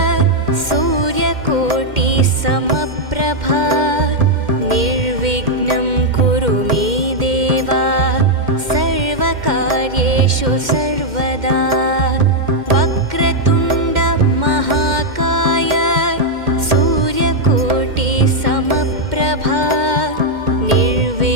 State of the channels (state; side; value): late; left; 2.1 ms